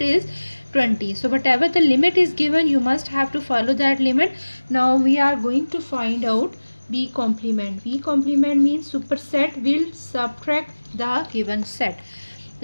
is 20. So whatever the limit is given, you must have to follow that limit. Now we are going to find out B complement. B complement means superset will subtract the given set.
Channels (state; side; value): inverted; both; correlation -1.00